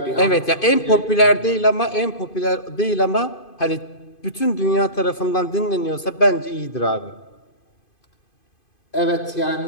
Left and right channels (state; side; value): late; right; 2.5 ms